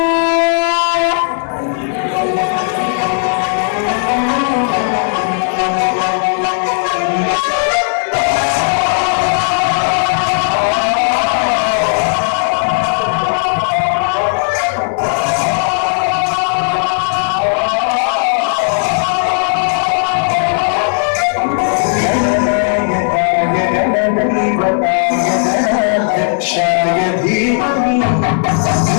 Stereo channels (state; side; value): silent; right; 60 dB below the other